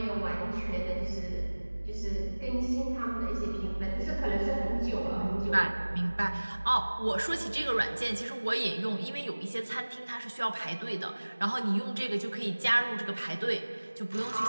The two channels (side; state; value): both; inverted; correlation -1.00